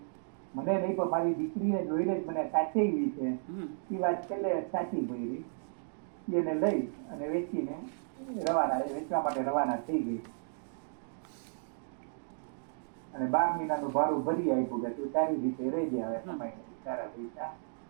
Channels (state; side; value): silent; left; digital silence